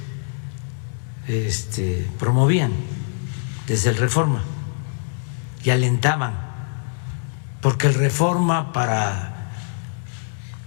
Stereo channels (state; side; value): silent; right; digital silence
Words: promovían desde el Reforma y alentaban, porque el Reforma, para